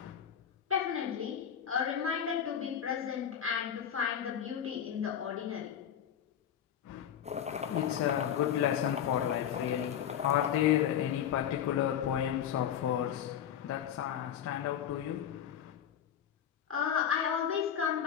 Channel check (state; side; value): quieter; right; 9.2 dB